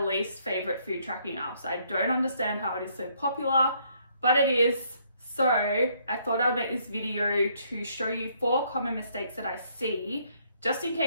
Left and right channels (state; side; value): inverted; both; correlation -0.68